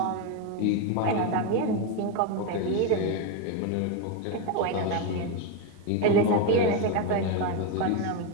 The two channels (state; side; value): different; both; correlation 0.02